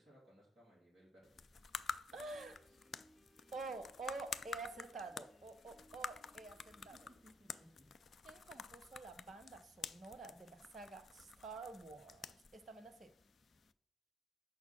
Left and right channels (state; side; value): normal; both; correlation 0.69